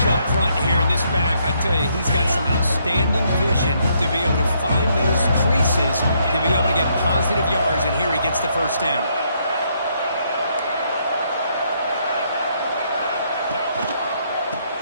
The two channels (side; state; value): both; inverted; correlation -0.72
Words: up front here in this back. I tell you, he's got some outstanding vision to be able to find those creases, to be able to get positive yards, and here he gets the first down.